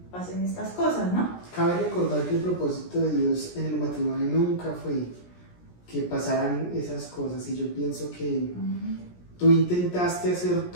pasen estas cosas, ¿no? Cabe recordar que el propósito de Dios en el matrimonio nunca fue que pasaran esas cosas, y yo pienso que tú intentaste hacer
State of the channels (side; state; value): right; late; 17 ms